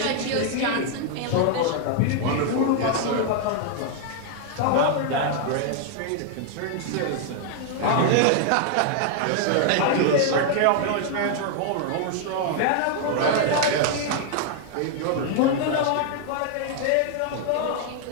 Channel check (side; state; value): both; different; correlation 0.00